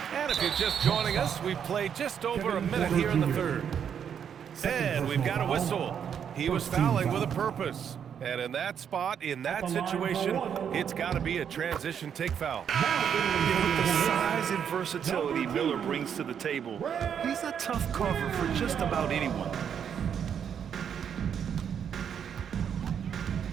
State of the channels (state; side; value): quieter; left; 8.1 dB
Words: And if you're just joining us, we've played just over a minute here in the third. And we've got a whistle. He was fouling with a purpose. And in that spot, in that situation, it's got to be a transition take foul. With the size and versatility Miller brings to the table, he's a tough cover for just about anyone.